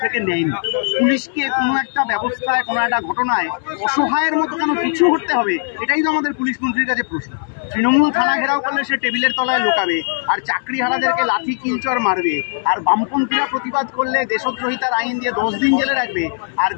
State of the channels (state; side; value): silent; right; digital silence